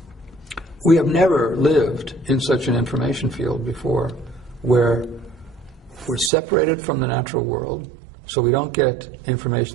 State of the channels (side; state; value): left; drops out; at 6.3 s